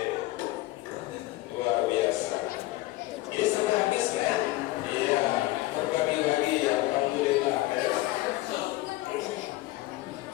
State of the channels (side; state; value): right; quieter; 18.4 dB